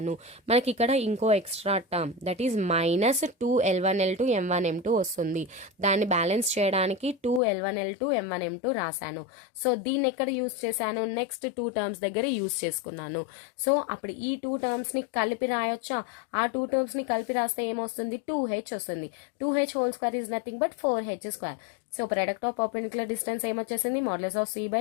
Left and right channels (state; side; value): drops out; right; at 7.4 s